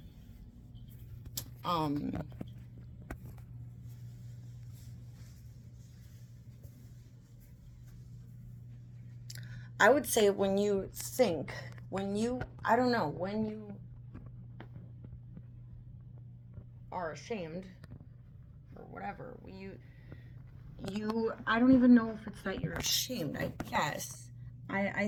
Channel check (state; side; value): identical; both; correlation 1.00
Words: I would say when you are ashamed or whatever, I don't even know if it's that you're ashamed, I guess. I